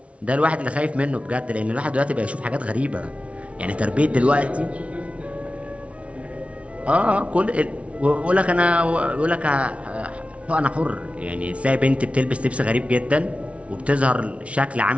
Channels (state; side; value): late; left; 0.063 ms